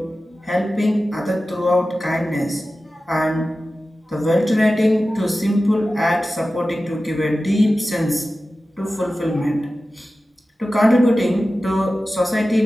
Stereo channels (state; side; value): normal; both; correlation 0.95